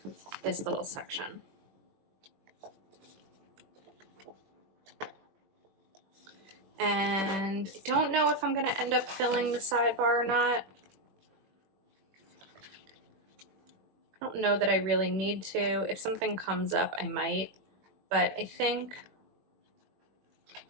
this little section. And I don't know if I'm going to end up filling the sidebar or not. I don't know that I really need to. If something comes up, I might. But I think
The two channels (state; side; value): late; left; 21 ms